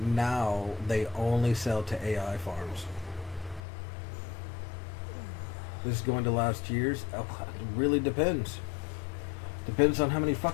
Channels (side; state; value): right; drops out; at 3.6 s